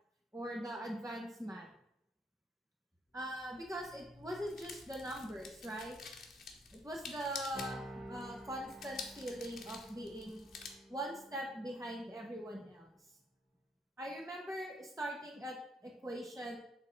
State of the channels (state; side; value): normal; both; correlation 0.72